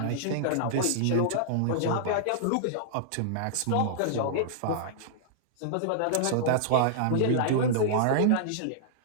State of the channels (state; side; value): different; both; correlation -0.02